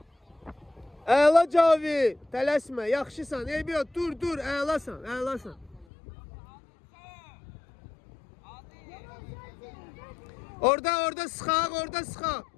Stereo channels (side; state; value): right; drops out; at 5.9 s